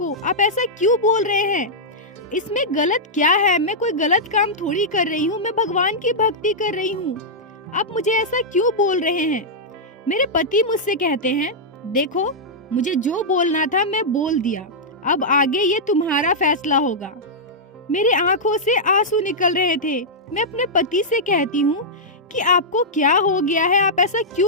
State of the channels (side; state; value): both; normal; correlation -0.09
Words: आप ऐसा क्यों बोल रहे हैं? इसमें गलत क्या है? मैं कोई गलत काम थोड़ी कर रही हूँ, मैं भगवान की भक्ति कर रही हूँ। आप मुझे ऐसा क्यों बोल रहे हैं? मेरे पति मुझसे कहते हैं, देखो मुझे जो बोलना था मैं बोल दिया, अब आगे ये तुम्हारा फैसला होगा। मेरे आंखों से आंसू निकल रहे थे। मैं अपने पति से कहती हूँ कि आपको क्या हो गया है, आप ऐसा